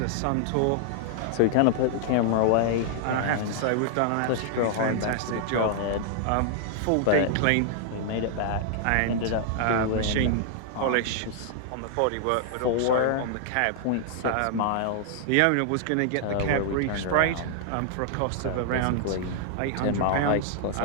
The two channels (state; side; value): different; both; correlation -0.01